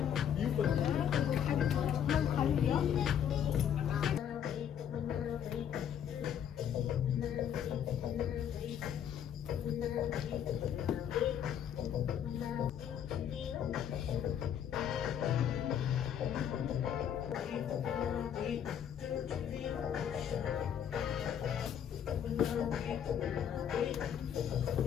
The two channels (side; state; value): right; quieter; 9.1 dB